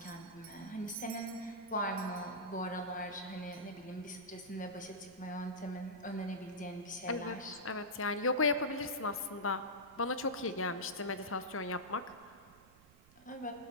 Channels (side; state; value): right; noise; rumble, 24 dB below the sound